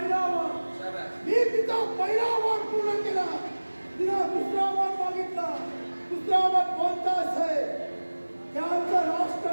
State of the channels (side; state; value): both; inverted; correlation -1.00